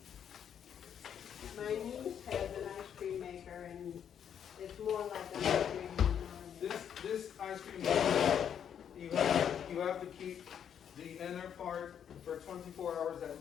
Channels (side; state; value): right; quieter; 8.6 dB